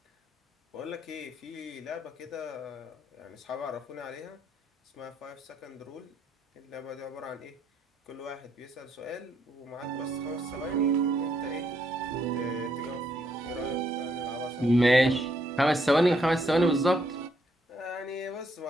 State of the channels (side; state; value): both; normal; correlation 0.73